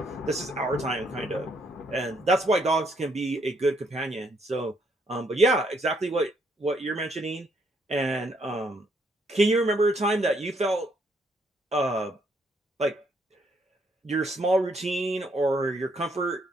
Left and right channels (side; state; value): both; normal; correlation 0.71